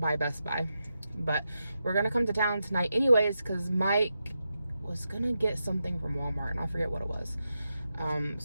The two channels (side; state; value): both; inverted; correlation -0.88